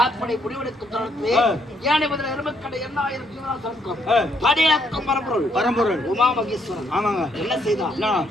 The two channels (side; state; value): both; normal; correlation 0.71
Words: அப்படி முடிவெடுக்கும் தருணத்திலே ஏனை முதல் எருமக்கடை 8000 ஜீவராசனுக்கும் படியக்கும் பரம்பொருள் உமா மகேஸ்வரன் என்ன செய்தார்?